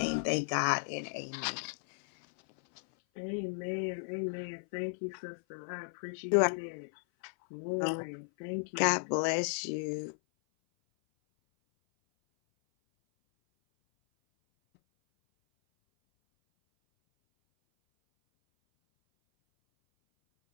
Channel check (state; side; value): silent; right; 55 dB below the other